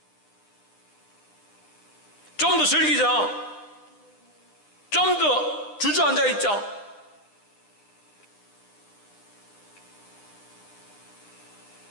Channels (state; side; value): late; right; 9.9 ms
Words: 좀 더 즐기자, 좀 더 주저앉아 있자.